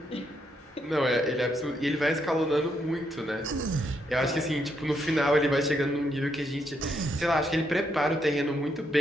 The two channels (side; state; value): both; normal; correlation 0.77